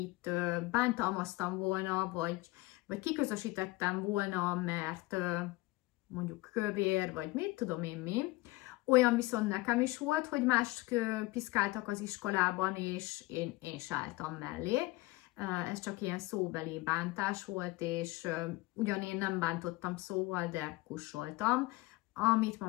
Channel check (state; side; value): quieter; right; 21.1 dB